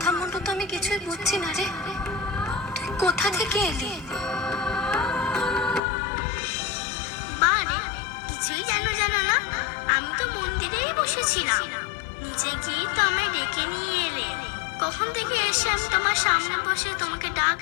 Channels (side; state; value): right; drops out; at 5.8 s